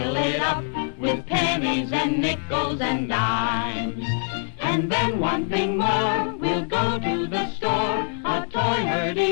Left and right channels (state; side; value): silent; right; digital silence